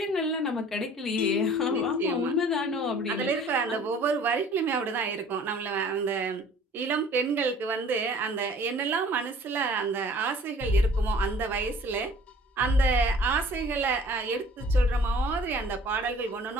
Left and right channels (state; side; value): normal; both; correlation 0.50